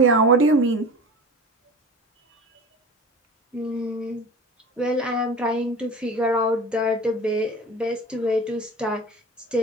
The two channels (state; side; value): normal; both; correlation 0.35